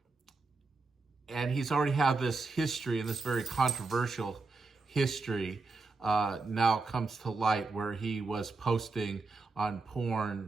he's already had this history, and this very controversial history now comes to light, where he was posting on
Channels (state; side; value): quieter; left; 3.8 dB